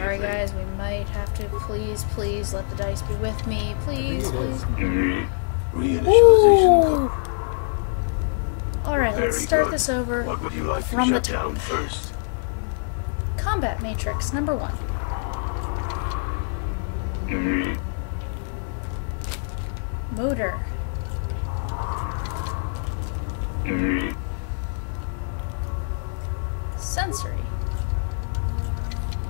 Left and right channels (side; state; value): right; silent; digital silence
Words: guys, we might have to please let the dice be with me. Please, I think it please. Reinitialization. Alright, let's Very start good. this over What would you like from to the shut down top. first? Combat matrix, number 1. Motor. Sensory.